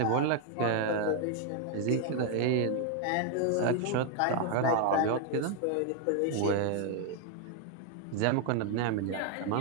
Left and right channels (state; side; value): different; both; correlation 0.00